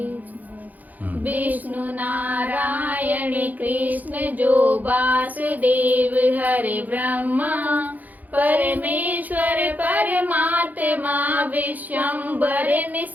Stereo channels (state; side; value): late; left; 0.081 ms